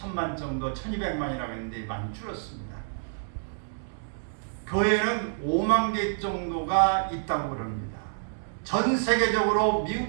정도, 1200만이라고 했는데 많이 줄었습니다. 교회는 5만 개 정도가 있다고 그럽니다. 전 세계적으로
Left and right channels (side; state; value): left; silent; digital silence